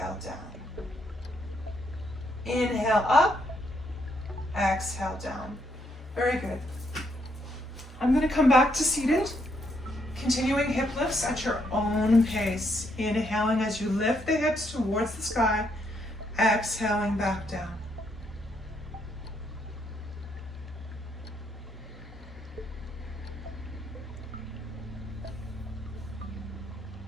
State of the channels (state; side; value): normal; both; correlation 0.74